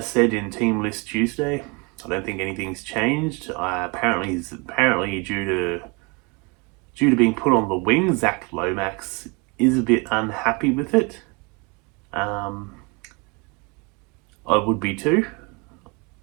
in Team List Tuesday. I don't think anything's changed. Apparently due to being put on the wing, Zach Lomax is a bit unhappy with it. I would be too.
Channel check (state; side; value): quieter; left; 29.9 dB